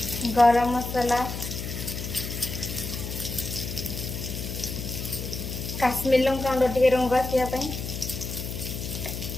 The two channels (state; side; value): noise; left; hum, 6 dB below the sound